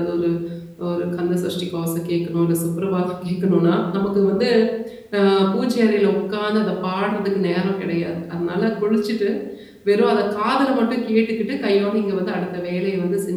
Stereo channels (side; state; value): both; identical; correlation 1.00